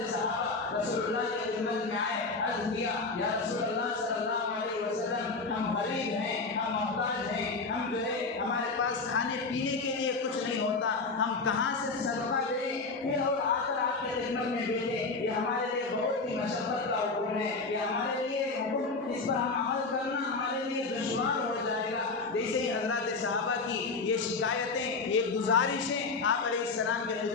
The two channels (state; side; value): quieter; right; 4.0 dB